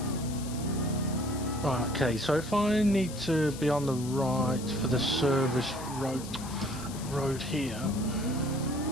Right, okay, so if I need to be on the right for the service road here.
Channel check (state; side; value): noise; left; hiss, 14 dB below the sound